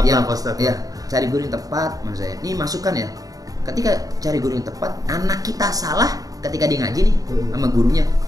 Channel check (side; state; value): left; late; 0.18 ms